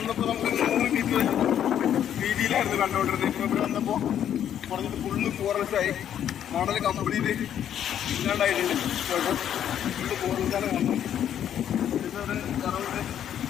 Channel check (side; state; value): right; quieter; 9.9 dB